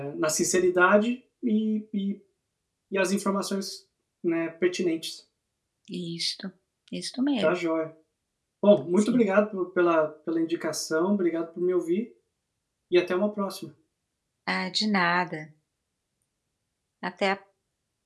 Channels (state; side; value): identical; both; correlation 1.00